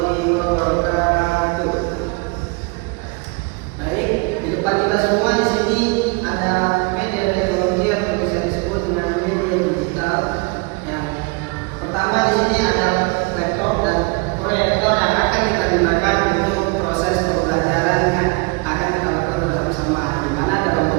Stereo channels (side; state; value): left; quieter; 29.2 dB